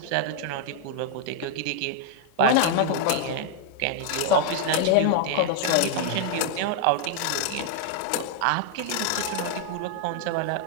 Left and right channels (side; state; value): both; different; correlation 0.00